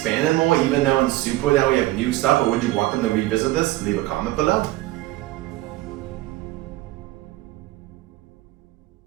more, even though in Super now we have new stuff, or would you want them to revisit this? Leave a comment below.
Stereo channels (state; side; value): quieter; left; 17.8 dB